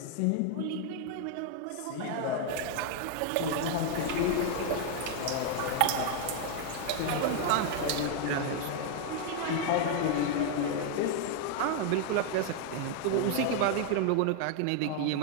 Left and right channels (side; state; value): both; different; correlation 0.00